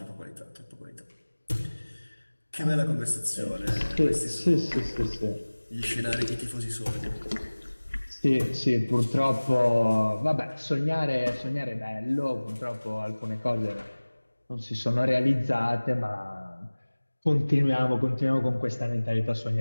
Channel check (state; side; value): inverted; both; correlation -1.00